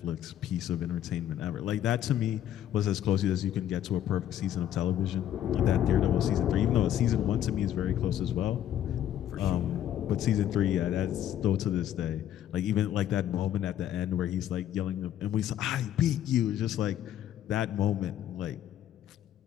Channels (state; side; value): quieter; right; 11.2 dB